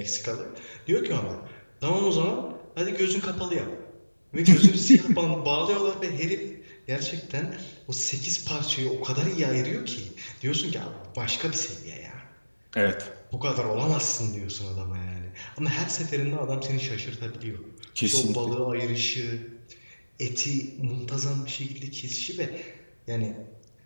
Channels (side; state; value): both; inverted; correlation -1.00